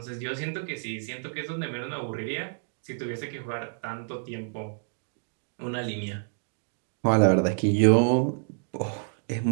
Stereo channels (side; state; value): left; silent; digital silence